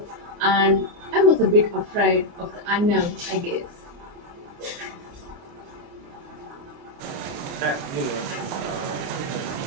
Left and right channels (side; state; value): left; late; 29 ms